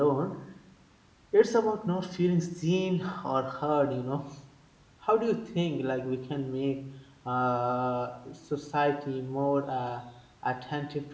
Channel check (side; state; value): both; identical; correlation 1.00